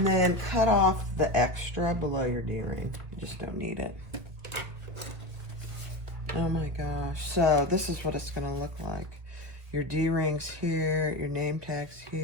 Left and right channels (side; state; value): left; late; 1.7 ms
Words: then cut off the extra below your D-ring. You just don't need it. Oh my gosh. So this is what it's going to look like. Your D-ring's here. Your name tag's